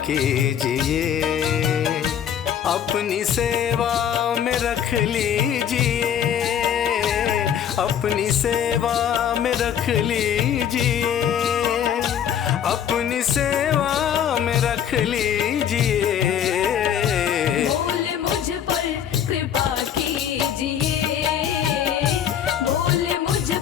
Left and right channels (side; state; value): right; quieter; 9.1 dB